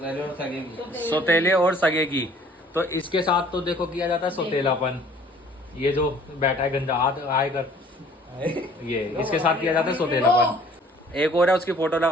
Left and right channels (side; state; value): both; normal; correlation 0.54